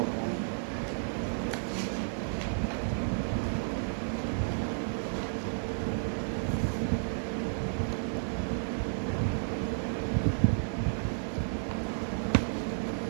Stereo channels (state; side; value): silent; left; digital silence